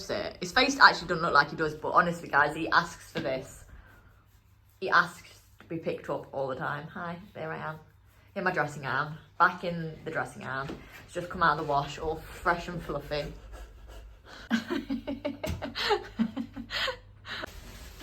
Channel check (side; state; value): both; identical; correlation 1.00